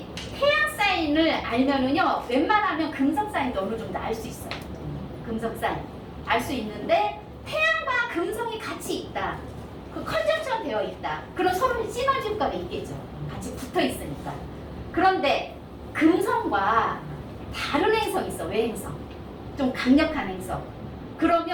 태양 사인을 알면은요 웬만하면 금성 사인도 어느 정도 알 수 있어요. 금성 사인 알 수 있는데 태양과 금성이 같이 있다. 그 컨정션 되어 있다. 그럼 서로 시너지 효과가 있겠죠. 같이 붙어 있으니까. 그런데 금성과 다른 행성이 있어. 외행성. 좀 강력한 행성.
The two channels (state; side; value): identical; both; correlation 1.00